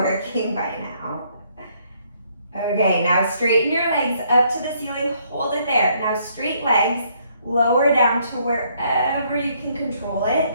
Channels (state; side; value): inverted; both; correlation -0.69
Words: by now. Okay, now straighten your legs up to the ceiling, hold it there. Now straight legs, lower down to wherever you can control it.